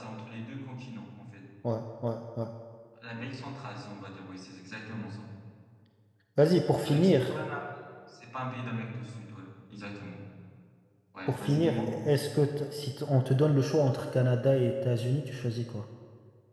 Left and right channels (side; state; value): both; identical; correlation 1.00